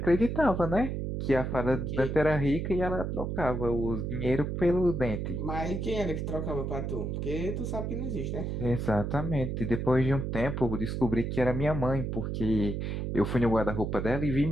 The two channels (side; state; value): right; noise; hum, 2 dB below the sound